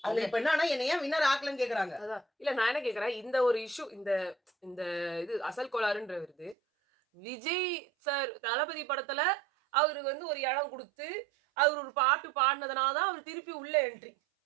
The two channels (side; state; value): left; drops out; at 6.6 s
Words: அவங்க அது இப்ப என்னன்னா, என்ன ஏன் வின்னர் ஆக்கலன்னு கேட்கறாங்க. அதான். இல்ல நான் என்ன கேட்கிறேன், இந்த ஒரு இஷ்யூ இந்த இந்த இது அசல் கோளாறுன்ற வருது. விஜய் சார் தளபதி படத்துல அவருக்கு வந்து ஒரு இடம் குடுத்து, அவரு ஒரு பாட்டு பாடுனதுனால தான் அவரு திருப்பி உள்ள என்ட்ரி.